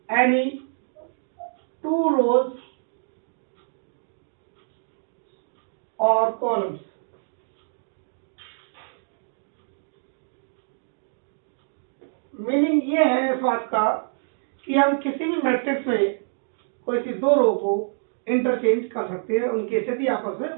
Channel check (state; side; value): silent; left; digital silence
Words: any two rows or columns। Meaning ये है इस बात का कि हम किसी भी मैट्रिक्स में कोई सी दो रो को इंटरचेंज कर सकते हैं, उनकी स्थिति आपस